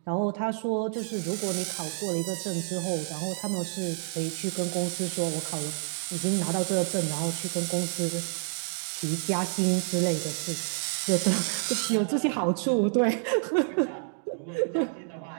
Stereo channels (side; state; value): left; silent; 59 dB below the other